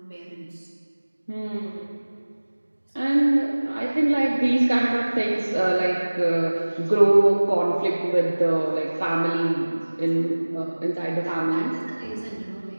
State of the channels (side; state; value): both; inverted; correlation -1.00